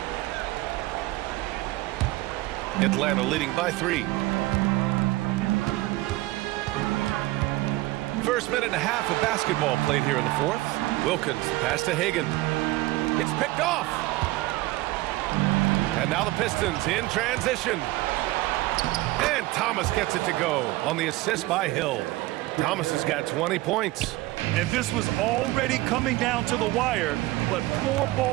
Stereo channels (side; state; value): left; quieter; 19.1 dB